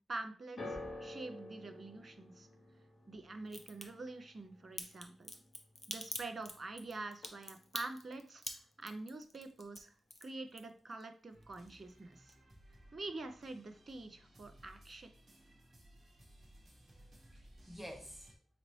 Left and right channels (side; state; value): both; normal; correlation 0.88